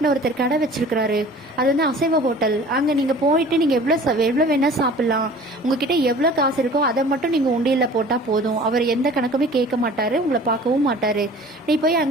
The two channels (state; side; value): normal; both; correlation 0.45